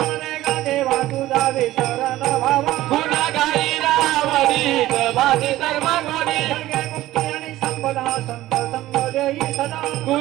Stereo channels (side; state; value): left; quieter; 15.7 dB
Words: दे गा देवा तुझा विसरण भावा गुणगाई रावणीत माझी सर्व गुणी सर्गे मुक्ती आणि संपदा संत संग देई सदा